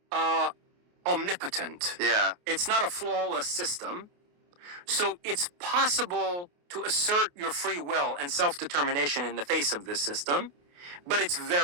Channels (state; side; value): late; left; 28 ms